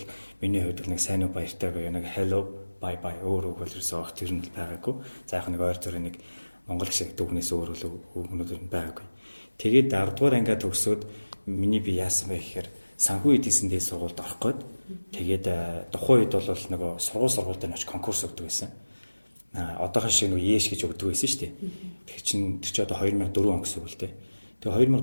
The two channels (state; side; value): inverted; both; correlation -1.00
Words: миний хувьд нэг сайн уу баяртай гоё нэг hello bye bye өөр үг бол ерөөсөө огт тэр нь байгаагүй. За яг нэг ойр зүрийн нэг монгол шиг дүгнээс өөр үгнүүд байгаагүй. Тэгээд 10 дугаар ангид төгсөөд миний би яасан бэ гэхээр санхүү эдийн засгийн дэд сургуульд орох гээд тэгээд тухайн үед бол нөгөө сургуульд нь очиж конкурс өгдөг байсан. Одоохон шиг нөгөө ЕШ гэж өгдөг байсан шүү дээ. Тэр чинь одоо 2004 он гэсэн үг л дээ. Тэгээ